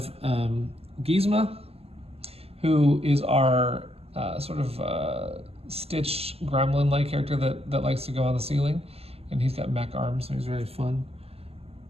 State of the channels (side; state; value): left; late; 0.29 ms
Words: Gizmo, who is our Stitch gremlin-like character that likes to go on the ceiling, and he's got mech arms, so he's very fun.